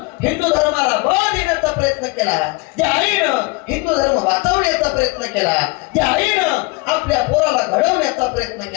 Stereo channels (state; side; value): quieter; right; 25.4 dB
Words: हिंदू धर्माला बळ देण्याचा प्रयत्न केला, ज्या आईनं हिंदू धर्म वाचवण्याचा प्रयत्न केला, ज्या आईनं आपल्या पोराला घडवण्याचा प्रयत्न